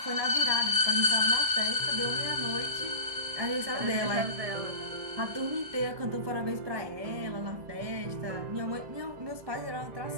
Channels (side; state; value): left; late; 1.7 ms